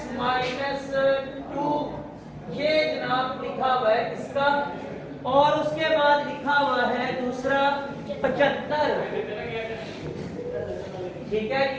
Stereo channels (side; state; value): both; identical; correlation 1.00